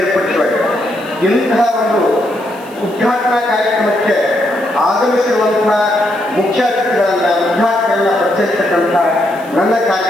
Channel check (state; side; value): noise; right; hiss, 24 dB below the sound